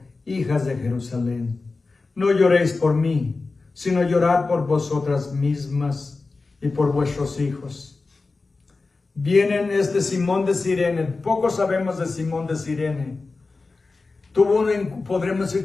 hijas de Jerusalén, no lloréis por mí, sino llorad por vosotras mismas y por vuestros hijos. Vienen Simón de Cirene. Poco sabemos de Simón de Cirene. Podremos decir,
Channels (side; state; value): right; quieter; 3.8 dB